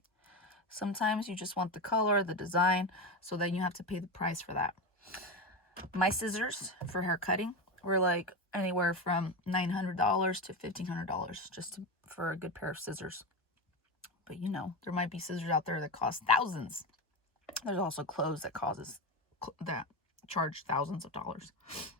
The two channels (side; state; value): both; normal; correlation 0.18